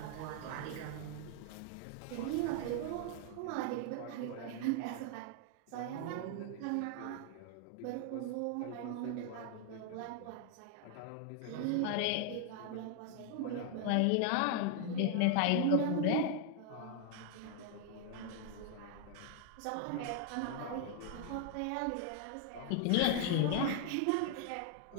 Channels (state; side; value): different; both; correlation 0.00